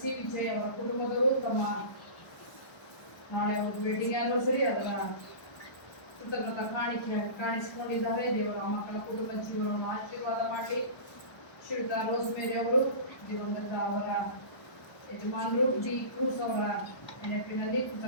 ವಿಜಯ್ ಅವರ ಕುಟುಂಬದವರು ತಮ್ಮ ನಾಳೆ ಒಂದು ವೆಡ್ಡಿಂಗ್ ಆನಿವರ್ಸರಿ ಅದರ ಕೃತಜ್ಞತಾ ಕಾಣಿಕೆ ಕಾಣಿಸಿಕೊಂಡಿದ್ದಾರೆ. ದೇವರ ಮಕ್ಕಳ ಕುಟುಂಬ ಜೀವನವನ್ನು ಆಶೀರ್ವಾದ ಮಾಡಲಿ. ಶ್ರೀಯುತ ರೋಸ್ಮೇರಿ ಅವರು ದಿವಂಗತ ಅವರ ಯಜಮಾನರು ಡಿ ಕ್ರೂಸ್ ಅವರ ನೆನಪಿನಲ್ಲಿ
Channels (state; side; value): late; right; 1.2 ms